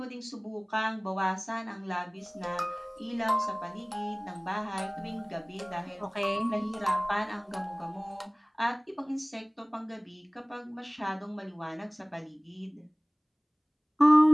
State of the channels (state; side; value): identical; both; correlation 1.00